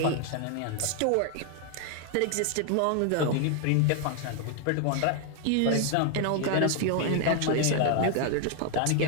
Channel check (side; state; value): both; different; correlation 0.00